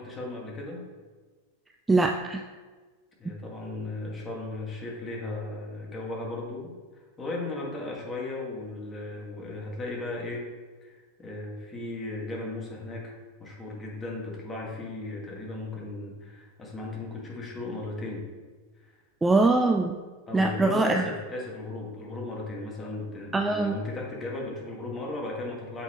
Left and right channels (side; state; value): both; normal; correlation 0.65